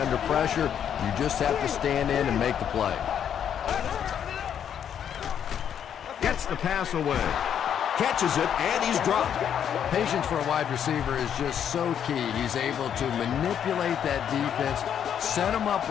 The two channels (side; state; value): right; quieter; 8.9 dB